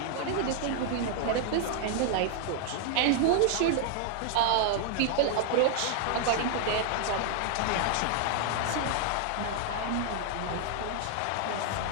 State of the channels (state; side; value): different; both; correlation 0.00